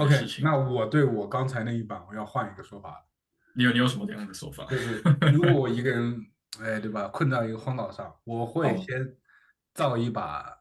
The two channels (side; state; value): both; identical; correlation 1.00